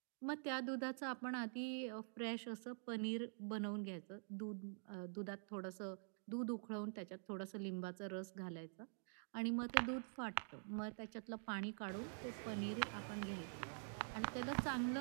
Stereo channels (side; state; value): left; silent; digital silence